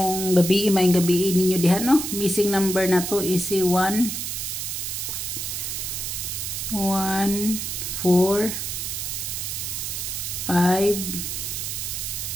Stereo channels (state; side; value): noise; right; hiss, 4 dB below the sound